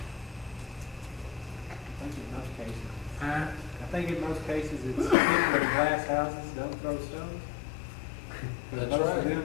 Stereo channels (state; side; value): drops out; right; at 5.2 s